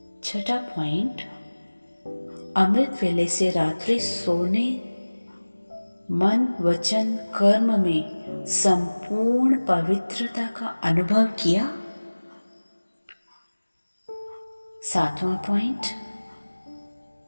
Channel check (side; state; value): both; inverted; correlation -1.00